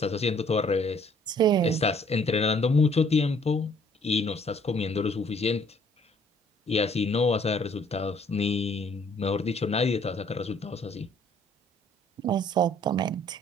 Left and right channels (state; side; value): normal; both; correlation 0.60